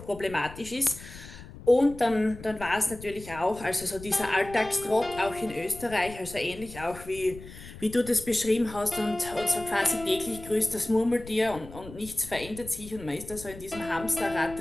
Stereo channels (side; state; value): left; noise; rumble, 15 dB below the sound